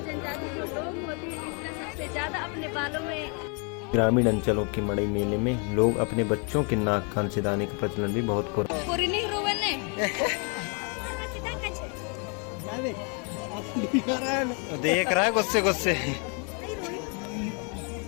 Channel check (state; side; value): quieter; right; 36.6 dB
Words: जनजाति जो लोग होते हैं इसका सबसे ज्यादा अपने बालों में। ग्रामीण अंचलों के मड़ई मेले में लोग अपने बच्चों के नाक कान सिदाने का प्रचलन भी बहुत हो देख रहा है गुस्से गुस्से।